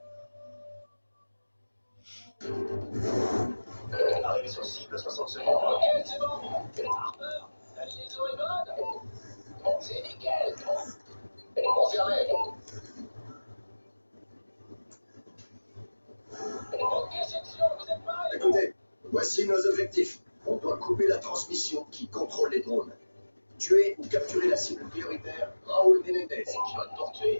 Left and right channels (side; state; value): both; inverted; correlation -1.00